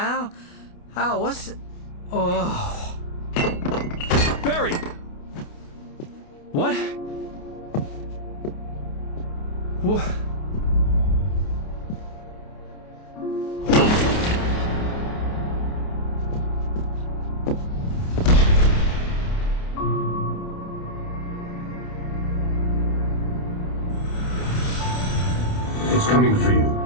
Al, what's... Oh... Barry! What? What? It's coming for you,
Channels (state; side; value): late; right; 28 ms